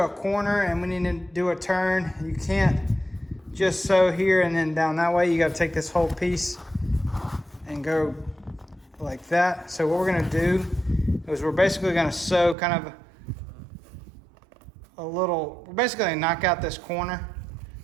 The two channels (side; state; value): left; drops out; at 12.6 s